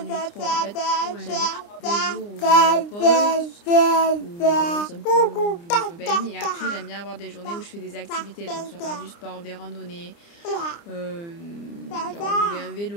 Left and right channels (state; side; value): late; right; 29 ms